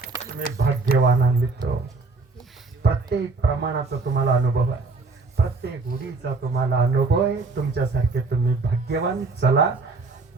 तुम्ही भाग्यवान मित्र. प्रत्येक प्रमाणाचा तुम्हाला अनुभव आहे, प्रत्येक उडीचा तुम्हाला अनुभव आहे. तुमच्यासारखे तुम्ही भाग्यवान. चला,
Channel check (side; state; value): left; quieter; 3.9 dB